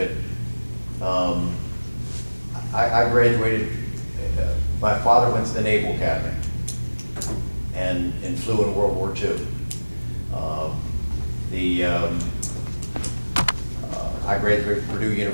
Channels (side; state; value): both; inverted; correlation -1.00